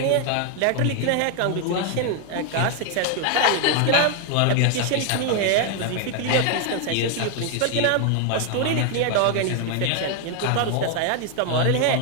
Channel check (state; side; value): different; both; correlation 0.00